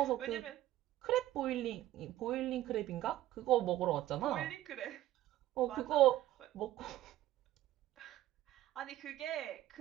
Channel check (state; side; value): quieter; left; 14.4 dB